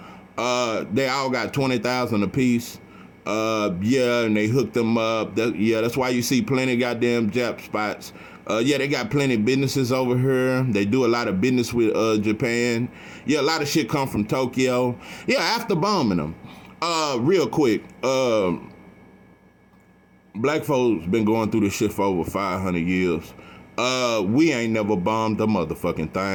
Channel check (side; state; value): both; identical; correlation 1.00